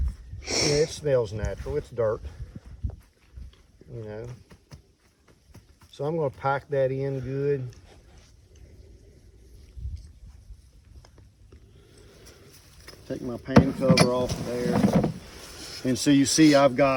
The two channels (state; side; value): identical; both; correlation 1.00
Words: it smells natural. It's dirt, you know. So I'm gonna pack that in good. Take my pan cover off there. And so you see I've